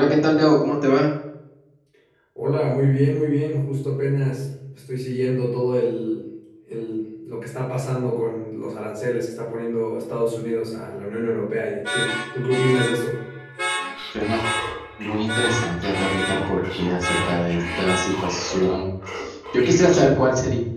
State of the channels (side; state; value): both; identical; correlation 1.00